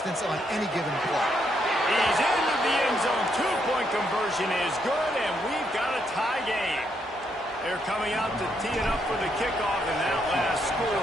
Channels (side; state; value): both; normal; correlation 0.76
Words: on any given play. He's into the end zone. 2-point conversion is good, and we've got a tie game. They're coming out to tee it up for the kickoff, and that last